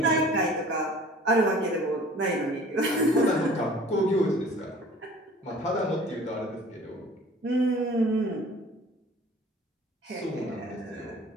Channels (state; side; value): normal; both; correlation 0.47